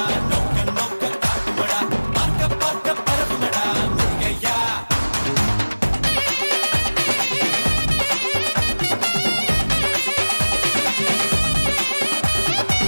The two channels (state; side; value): inverted; both; correlation -1.00